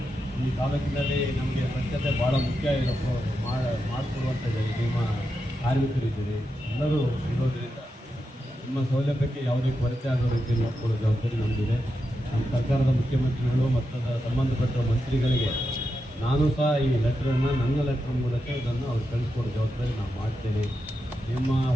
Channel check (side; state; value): both; normal; correlation 0.87